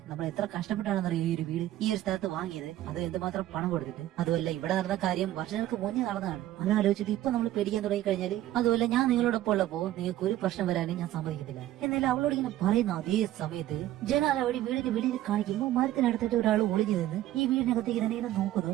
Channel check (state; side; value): quieter; left; 13.9 dB